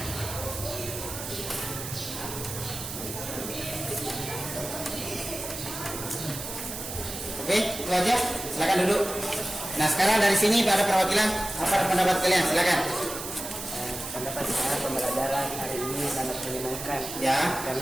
Oke, itu aja. Silakan duduk. Nah, sekarang dari sini ada perwakilan. Apa pendapat kalian? Silakan. pendapat saya pembelajaran hari ini sangat menyenangkan. Ya.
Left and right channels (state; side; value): noise; right; hiss, 8 dB below the sound